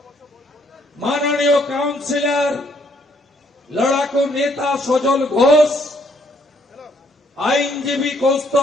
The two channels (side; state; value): both; normal; correlation 0.68